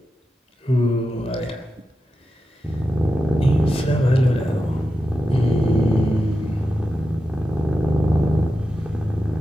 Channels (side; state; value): both; normal; correlation 0.90